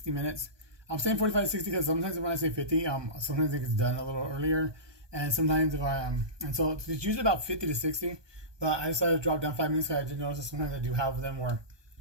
minutes. I'm saying 45 to 60 because sometimes when I say 50, sometimes it gets done a little earlier. And sometimes if and so it's usually about 50 to 60, but I decided to drop down 5 minutes because I did notice that sometimes I do have them where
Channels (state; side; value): late; left; 1.2 ms